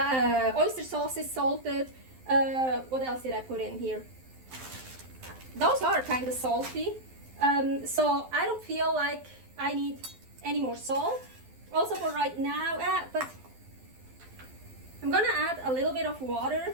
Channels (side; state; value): left; late; 12 ms